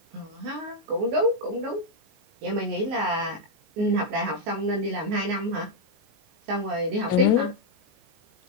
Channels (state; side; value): late; left; 19 ms